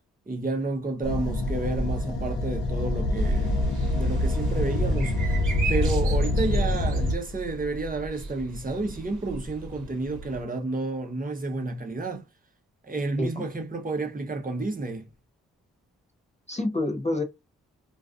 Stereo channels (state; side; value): normal; both; correlation 0.68